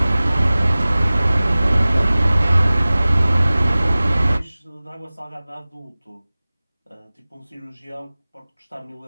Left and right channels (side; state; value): both; inverted; correlation -0.98